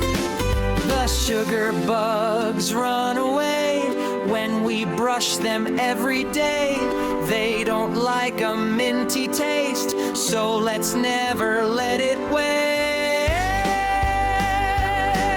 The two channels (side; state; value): both; identical; correlation 1.00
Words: The sugar bugs run away when we brush them every day. They don't like a minty taste, so let's never let it waste.